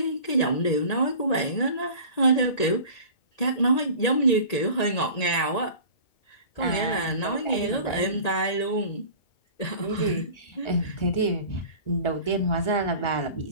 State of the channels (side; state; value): right; late; 1.8 ms